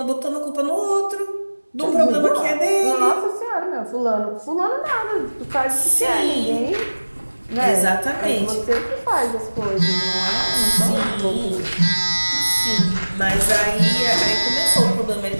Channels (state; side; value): inverted; both; correlation -1.00